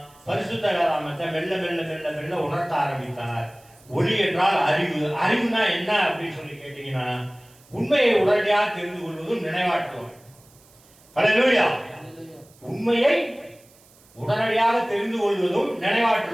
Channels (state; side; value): noise; right; hiss, 28 dB below the sound